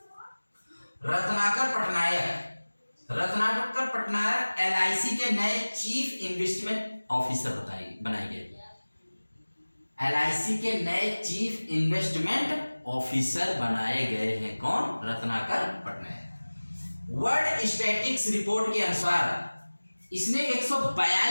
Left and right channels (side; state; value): both; inverted; correlation -1.00